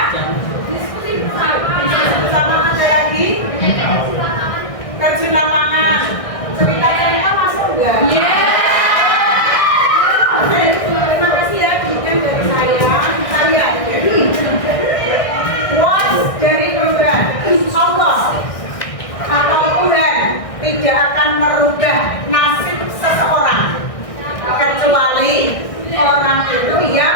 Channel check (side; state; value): right; late; 1.6 ms